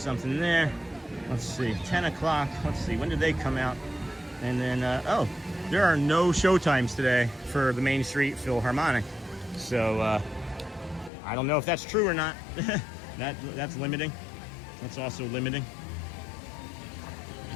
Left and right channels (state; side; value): drops out; right; at 11.1 s